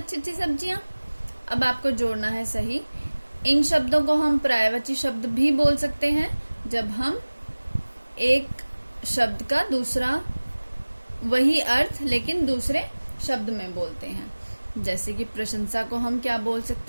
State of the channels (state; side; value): inverted; both; correlation -1.00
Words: अच्छी सब्जियां। अब आपको जोड़ना है सही। इन शब्दों को हम पर्यायवाची शब्द भी बोल सकते हैं जब हम एक शब्द का दूसरा वही अर्थ लेकिन दूसरे शब्द में बोलते हैं। जैसे कि प्रशंसा को हम क्या बोल